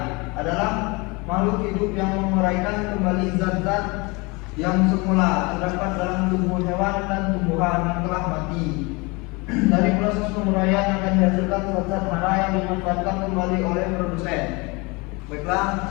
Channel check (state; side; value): quieter; right; 26.8 dB